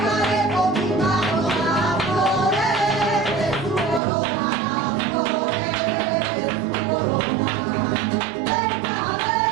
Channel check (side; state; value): left; drops out; at 4.0 s